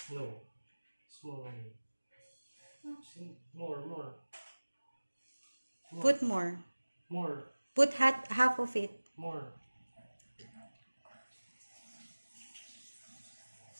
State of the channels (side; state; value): both; inverted; correlation -1.00